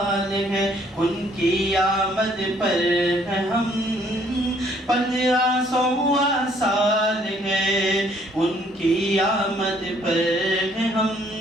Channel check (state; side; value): normal; both; correlation 0.63